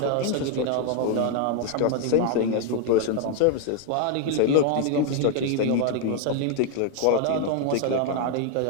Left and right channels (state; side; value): different; both; correlation 0.01